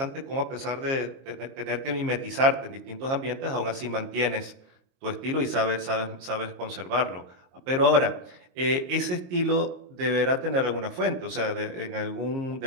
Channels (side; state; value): left; late; 22 ms